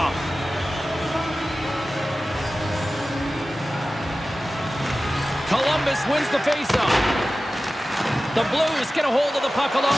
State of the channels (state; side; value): normal; both; correlation 0.95